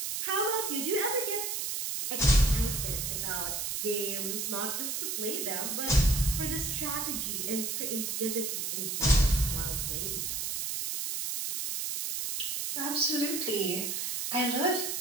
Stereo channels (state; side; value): noise; right; hiss, 2 dB below the sound